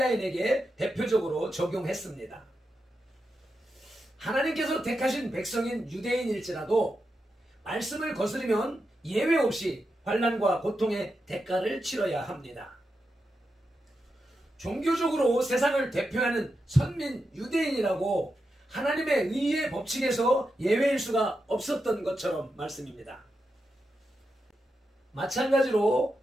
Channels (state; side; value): normal; both; correlation 0.87